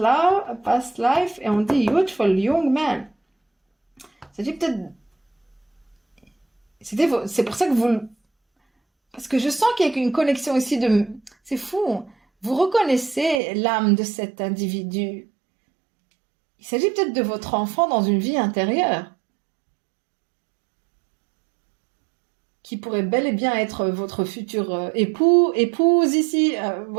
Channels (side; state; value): left; drops out; at 13.4 s